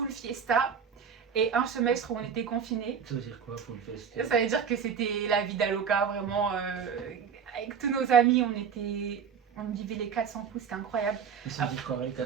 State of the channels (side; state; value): left; quieter; 7.0 dB